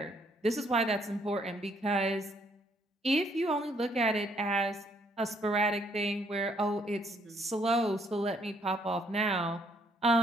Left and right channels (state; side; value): normal; both; correlation 0.68